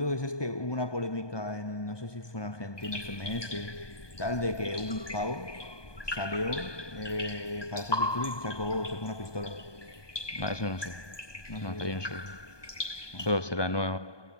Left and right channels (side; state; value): right; late; 1.2 ms